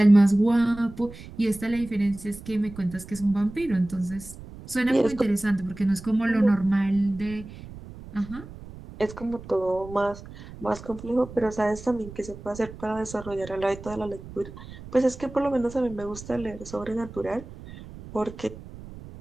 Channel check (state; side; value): noise; right; rumble, 15 dB below the sound